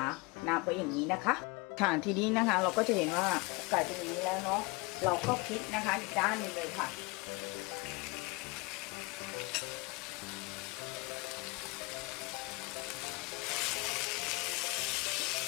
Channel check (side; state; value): right; quieter; 26.8 dB